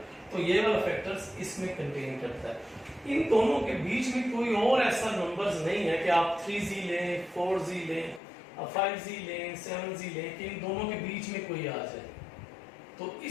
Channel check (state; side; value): drops out; right; at 8.2 s